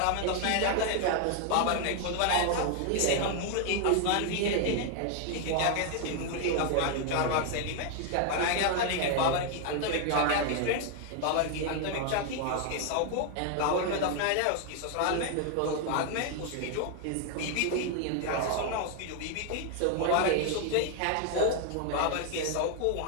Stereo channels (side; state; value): both; different; correlation 0.00